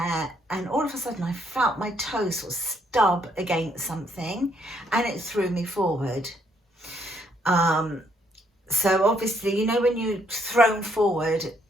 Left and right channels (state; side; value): normal; both; correlation 0.70